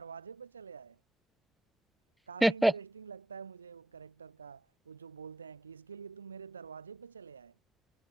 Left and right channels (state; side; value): normal; both; correlation 0.88